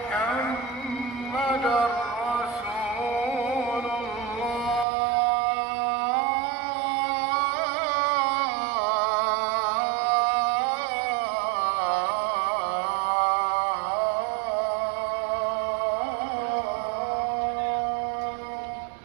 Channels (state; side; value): drops out; left; at 4.9 s